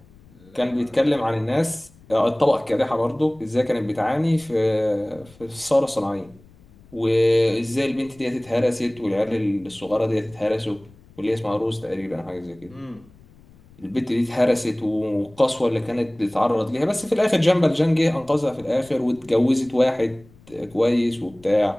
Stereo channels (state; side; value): noise; left; rumble, 26 dB below the sound